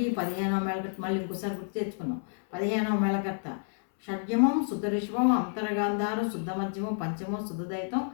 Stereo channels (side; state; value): right; silent; 58 dB below the other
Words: 15వ మేళకర్త. మళ్ళీ ఇంకోసారి గుర్తు తెచ్చుకుందాం. 15వ మేళకర్త షడ్జమం శుద్ధరిషభం అంతరగాంధారం శుద్ధ మధ్యమం పంచమం శుద్ధదైతం